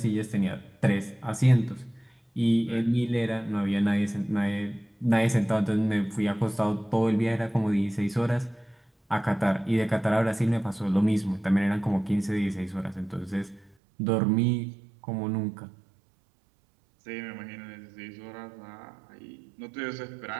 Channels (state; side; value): drops out; left; at 13.8 s